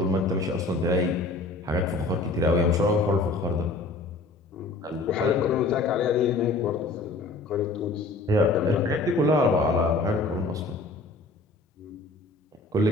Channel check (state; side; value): quieter; right; 3.2 dB